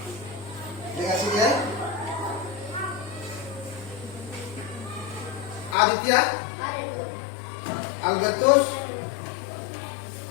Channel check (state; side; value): drops out; right; at 5.8 s